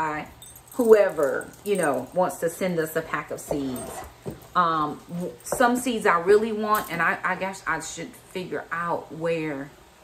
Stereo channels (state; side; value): identical; both; correlation 1.00